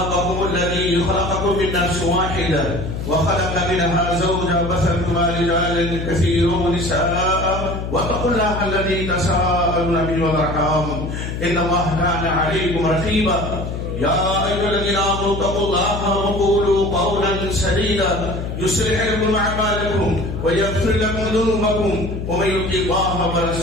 الذي خلقكم من نفس واحدة وخلق منها زوجها وبث منهما رجالا كثيرا ونساء واتقوا الله الذي تساءلون به والأرحام إن الله كان عليكم رقيبا يا أيها الذين آمنوا اتقوا الله وقولوا قولا سديدا يصلح لكم أعمالكم ويغفر لكم ذنوبكم ومن يطع الله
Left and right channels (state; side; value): noise; left; hum, 5 dB below the sound